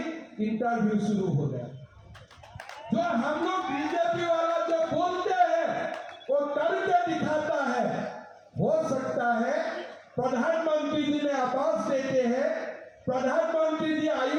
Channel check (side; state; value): both; identical; correlation 1.00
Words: इंटरव्यू शुरू हो गया। जो हम लोग बीजेपी वाला जो बोलते हैं वो करके दिखाता है। हो सकता है प्रधानमंत्री जी ने आवास देते हैं, प्रधानमंत्री जी